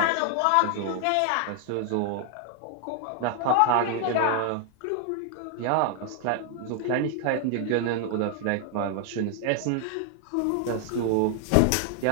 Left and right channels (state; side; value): different; both; correlation 0.00